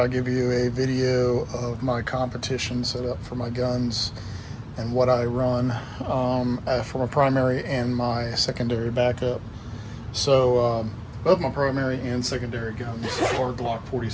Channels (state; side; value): identical; both; correlation 1.00